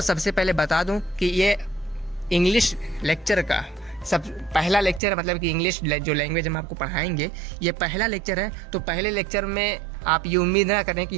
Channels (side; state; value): left; drops out; at 5.0 s